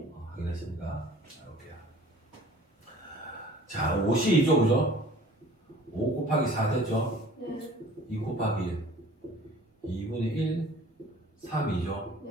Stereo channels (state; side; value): normal; both; correlation 0.49